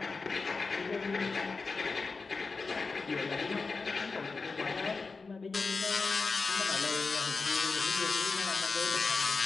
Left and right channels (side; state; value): right; quieter; 4.3 dB